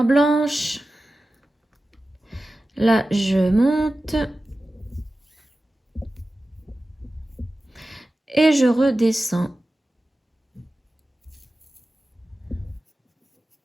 blanche. Là, je monte. Et je redescends.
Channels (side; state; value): both; normal; correlation 0.94